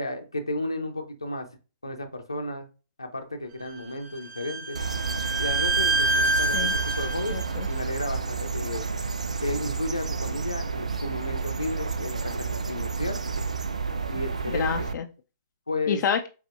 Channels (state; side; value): inverted; both; correlation -0.37